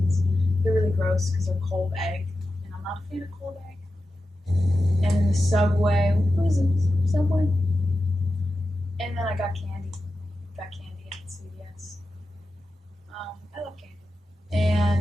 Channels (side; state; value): both; normal; correlation 0.92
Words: They're really gross because they're cold egg, and I'm not a fan of cold egg. And then the Subway, what was it? Subway? And then I got candy. Got candy at CVS. I love candy.